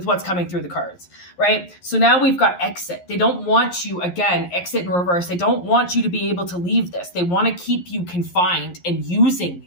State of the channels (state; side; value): late; right; 11 ms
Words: what's coming through the cards, right? So now we've got exit. They don't want you, again, exit in reverse. They don't want you to be able to leave this. They want to keep you confined and using